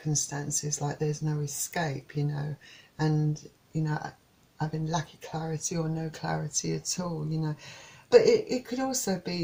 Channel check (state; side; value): identical; both; correlation 1.00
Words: like there's no escape, you know, and, you know, having lack of clarity or no clarity at all, you know. But it could also